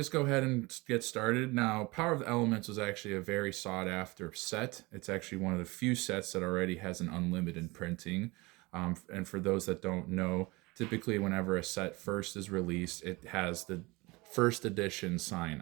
go ahead and get started. Now, Power of the Elements was actually a very sought after set. It's actually one of the few sets that already has an unlimited printing. And for those that don't know, typically whenever a set first is released, it has the first edition sign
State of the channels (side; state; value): left; quieter; 23.7 dB